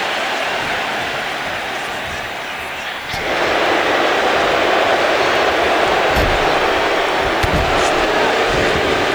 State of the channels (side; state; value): left; noise; hiss, 24 dB below the sound